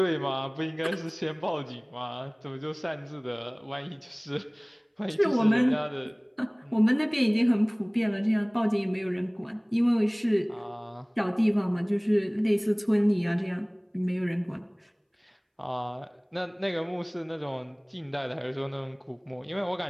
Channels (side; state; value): both; identical; correlation 1.00